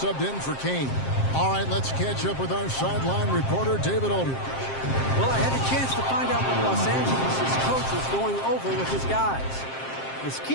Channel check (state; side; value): late; right; 7.6 ms